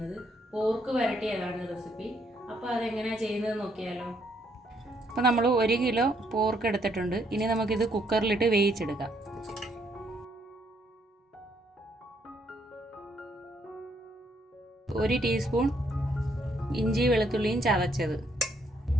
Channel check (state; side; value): normal; both; correlation 0.71